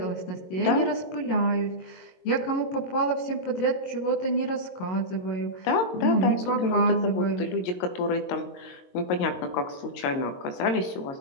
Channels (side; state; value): right; late; 22 ms